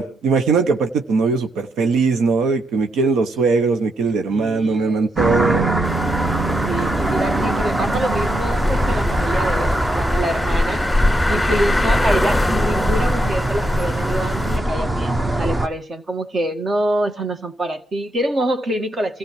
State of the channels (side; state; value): both; normal; correlation 0.81